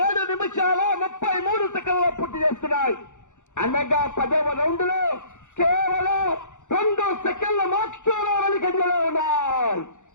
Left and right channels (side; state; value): right; late; 0.85 ms